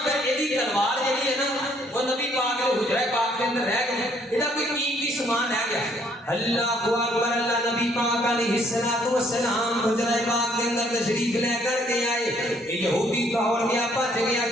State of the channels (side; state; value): both; normal; correlation 0.65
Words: پھر ایدی تلوار جڑی ہے نا وہ نبی پاک کے حجرہ پاک کے اندر رہ گئی، ایڈا کوئی قیمتی سامان رہ گیا۔ اللہ اکبر، اللہ نبی پاک علیہ الصلوۃ والسلام حجرہ پاک کے اندر تشریف لے کر کے آئے، یہودی دوڑ گیا بھج گیا